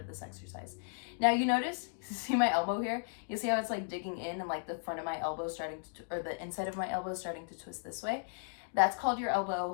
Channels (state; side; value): silent; right; digital silence